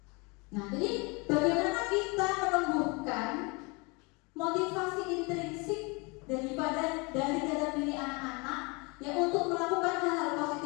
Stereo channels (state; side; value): quieter; right; 29.0 dB